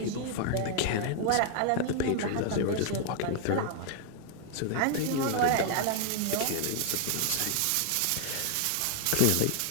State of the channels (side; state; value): both; different; correlation 0.00